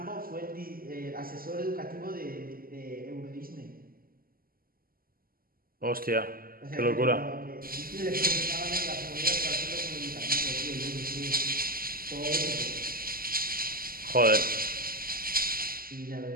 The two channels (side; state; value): left; late; 0.42 ms